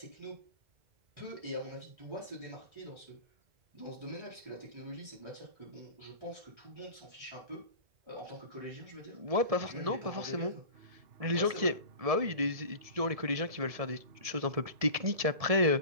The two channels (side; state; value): left; late; 1.7 ms